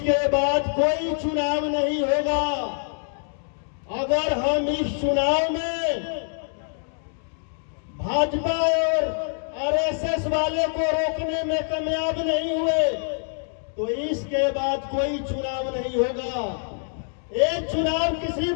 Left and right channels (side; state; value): right; silent; digital silence